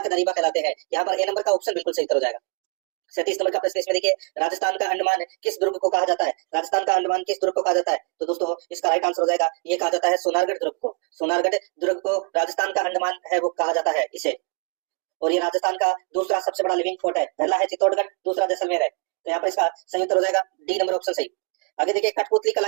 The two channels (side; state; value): left; quieter; 34.3 dB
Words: दरीबा कहलाते हैं। यहाँ पर ए नंबर का ऑप्शन बिल्कुल सही उत्तर हो जाएगा। 37 नंबर का प्रश्न इसमें देखिए राजस्थान का अंडमान किस दुर्ग को कहा जाता है, राजस्थान का अंडमान किस दुर्ग को कहा जाता है, तो दोस्तों इसका राइट आंसर हो जाएगा ये कहा जाता है सोनारगढ़ दुर्ग को, सोनारगढ़ दुर्ग को राजस्थान का अंडमान है वो कहा जाता है इसे। और ये राजस्थान का दूसरा सबसे बड़ा लिविंग फोर्ट है, पहला है चित्तौड़गढ़, दूसरा जैसलमेर है। तो यहाँ पर इसका सही उत्तर हो जाएगा डी नंबर ऑप्शन सही। आगे देखिए कठपुतली कला